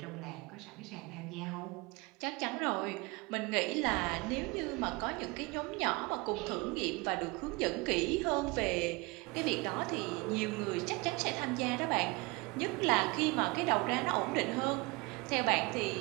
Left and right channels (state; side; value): quieter; left; 25.6 dB